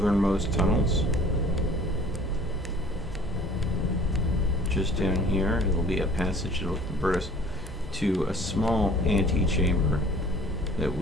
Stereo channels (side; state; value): both; normal; correlation 0.50